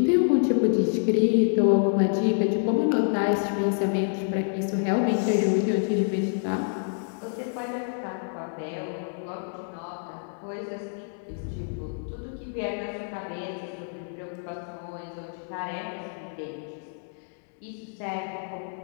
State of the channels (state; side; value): silent; right; digital silence